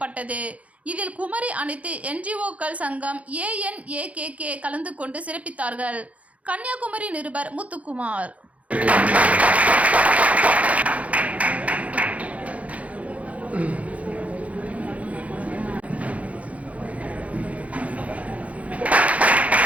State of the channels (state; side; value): late; left; 0.066 ms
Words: இதில் குமரி அனைத்து என்ஜிஓக்கள் சங்கம் ANAKK கலந்து கொண்டு சிறப்பித்தார்கள். கன்னியாகுமரி நிருபர் முத்துக்குமார்.